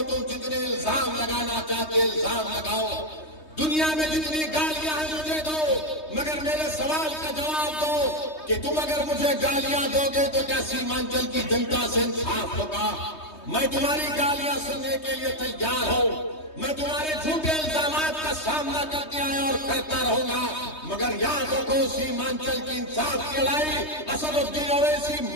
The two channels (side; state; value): right; late; 3.2 ms